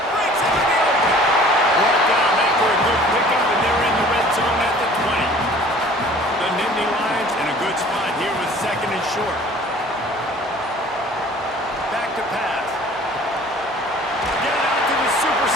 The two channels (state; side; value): normal; both; correlation 0.49